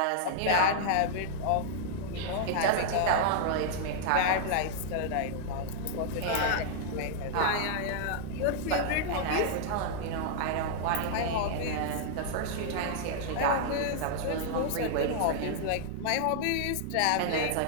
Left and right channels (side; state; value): both; different; correlation -0.01